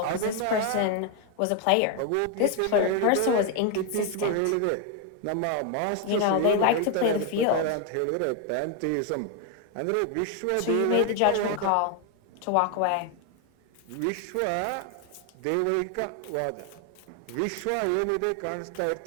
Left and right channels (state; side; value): different; both; correlation 0.01